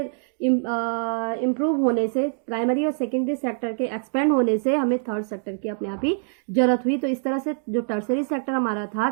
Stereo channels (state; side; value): silent; left; digital silence